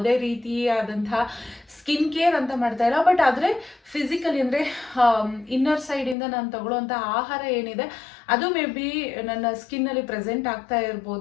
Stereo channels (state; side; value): drops out; right; at 6.2 s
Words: ರೀತಿಯಾದಂತಹ ಸ್ಕಿನ್ ಕೇರ್ ಅಂತ ಮಾಡ್ತಾ ಇಲ್ಲ. ಬಟ್ ಆದರೆ ಫಿಸಿಕಲಿ ಅಂದರೆ ಇನ್ನರ್ ಸೈಡಿಂದ ನಾನು ತಗೊಳ್ಳೋವಂಥ ಆಹಾರ ಏನಿದೆ ಅದು ಮೇ ಬಿ ನನ್ನ ಸ್ಕಿನ್ನಲ್ಲಿ ಪ್ರೆಸೆಂಟ್ ಆಗ್ತಾ